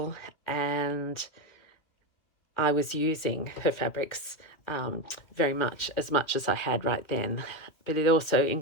and I was using her fabrics very much as I had right then. But it also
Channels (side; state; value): right; late; 2.7 ms